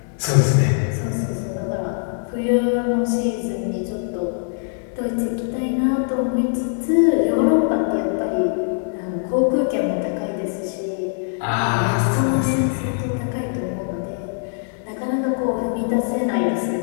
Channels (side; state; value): right; silent; digital silence